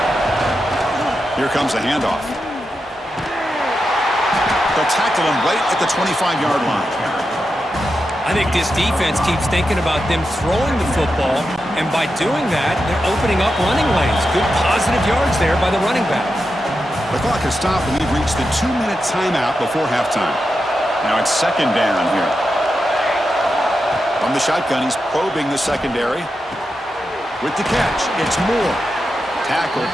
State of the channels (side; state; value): both; normal; correlation 0.88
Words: Here comes a handoff. They'll tackle him right at the 25-yard line. I think this defense keeps thinking about them throwing the football, and by doing that, they're opening up running lanes. Good positive yards there by the running back. The clock has stopped, and we've reached the 2-minute timeout before halftime. Now it's second down here. From the shotgun, he's probing the secondary. With the catch, it's Moore. Tackled,